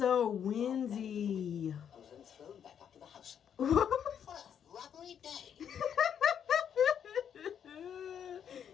windy. I was then thrown back up to the house. What a rubbery day.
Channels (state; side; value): quieter; right; 8.5 dB